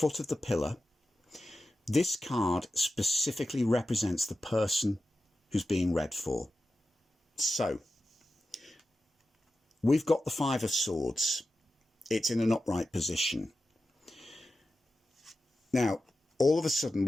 of the pillar. This card specifically represents the person who's being read for. So we've got the 5 of Swords. It's in an upright position. Now, all of a sudden,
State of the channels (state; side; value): normal; both; correlation 0.92